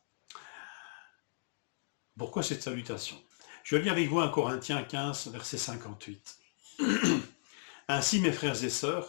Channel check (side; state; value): right; silent; digital silence